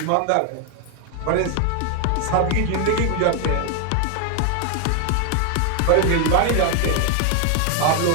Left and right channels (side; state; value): both; different; correlation 0.01